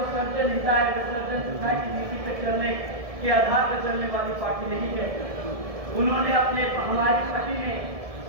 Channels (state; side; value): late; left; 1.7 ms